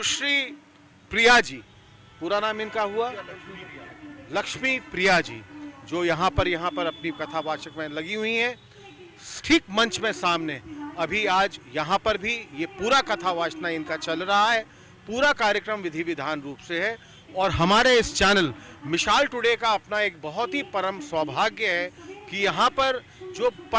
प्रिया जी, पूरा नाम इनका हुआ लक्ष्मी प्रिया जी, जो यहाँ पर अपनी कथावाचक में लगी हुई हैं। ठीक मंच में सामने अभी आज यहाँ पर भी ये पूरा कथावाचना इनका चल रहा है। पूरा कार्यक्रम विधि विधान रूप से है और हमारे इस चैनल मिसाल टुडे का अपना एक बहुत ही परम सौभाग्य है कि यहाँ पर जो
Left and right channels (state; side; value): identical; both; correlation 1.00